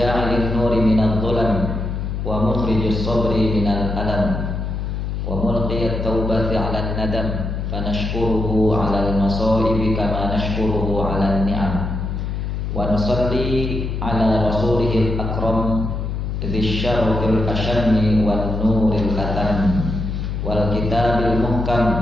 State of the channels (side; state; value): left; noise; hum, 3 dB below the sound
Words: nuri minadh dhulam wa mukhrijis sabri minal alam wa mulqiyat taubati 'alan nadam fanashkuruhu 'alal masaibi kama nashkuruhu 'alan ni'am wa nusalli 'ala rasulihil akram dzis syarafil ashammi wan nuril katam wal kitabil